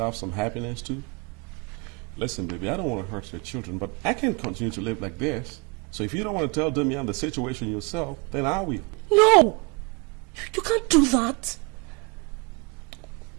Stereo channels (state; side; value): quieter; left; 30.3 dB